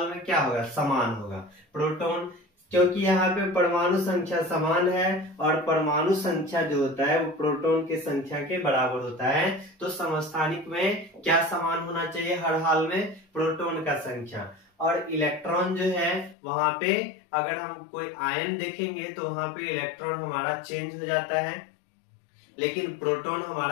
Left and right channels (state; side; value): drops out; right; at 16.4 s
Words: में क्या होगा, समान होगा। प्रोटॉन, क्योंकि यहाँ पे परमाणु संख्या समान है और परमाणु संख्या जो होता है वो प्रोटॉन की संख्या के बराबर होता है। तो समस्थानिक में क्या समान होना चाहिए हर हाल में, प्रोटॉन का संख्या। और इलेक्ट्रॉन जो है वहां पे अगर हम कोई आयन देखेंगे तो वहां पे इलेक्ट्रॉन हमारा चेंज हो जाता है, लेकिन प्रोटॉन